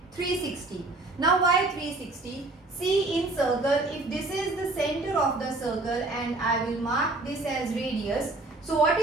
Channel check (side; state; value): left; quieter; 3.0 dB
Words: 360. Now why 360? See, in circle, if this is the center of the circle and I will mark this as radius, so what